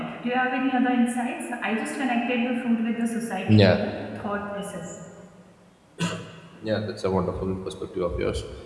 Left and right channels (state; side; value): identical; both; correlation 1.00